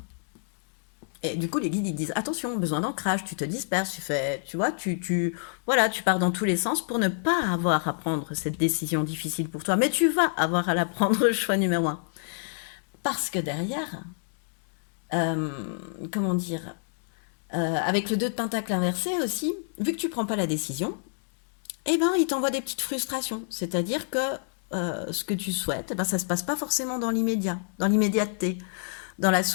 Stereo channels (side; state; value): right; silent; digital silence